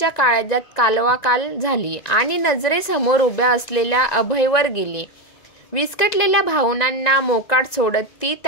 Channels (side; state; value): right; late; 1.9 ms